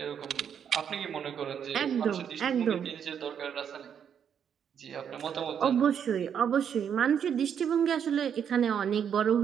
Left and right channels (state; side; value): quieter; left; 8.1 dB